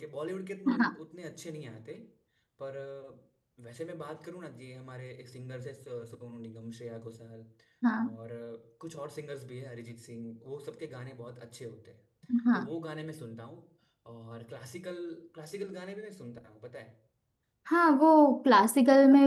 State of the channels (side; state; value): both; identical; correlation 1.00